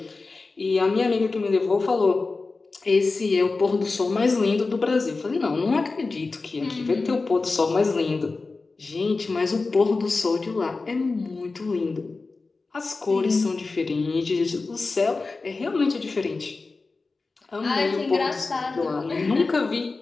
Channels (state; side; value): quieter; right; 3.8 dB